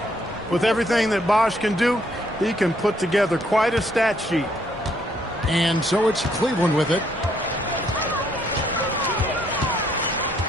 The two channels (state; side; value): normal; both; correlation 0.69